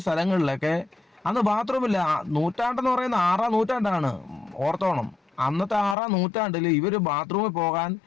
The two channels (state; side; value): drops out; right; at 6.0 s